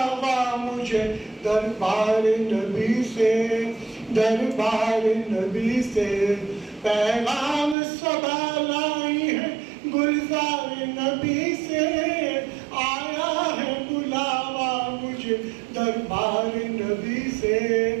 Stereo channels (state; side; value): drops out; left; at 7.8 s